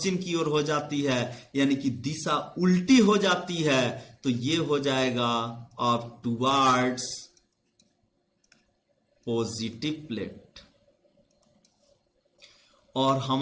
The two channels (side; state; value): both; identical; correlation 1.00